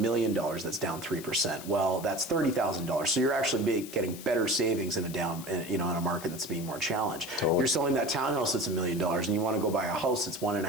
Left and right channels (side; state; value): left; noise; hiss, 14 dB below the sound